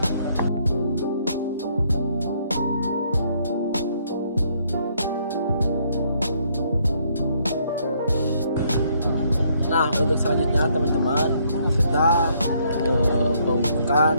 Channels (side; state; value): both; inverted; correlation -0.69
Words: Nah, untuk selanjutnya teman-teman, kita pemupukan